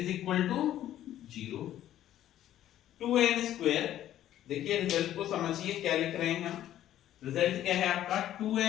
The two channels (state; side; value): quieter; right; 12.3 dB